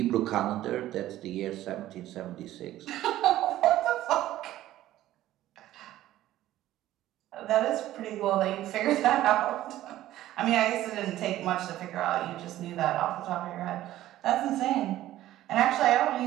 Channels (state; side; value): quieter; left; 14.2 dB